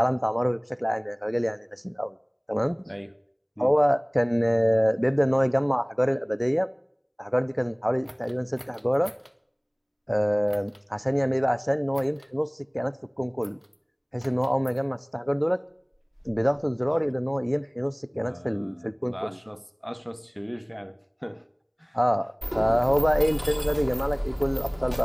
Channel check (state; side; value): identical; both; correlation 1.00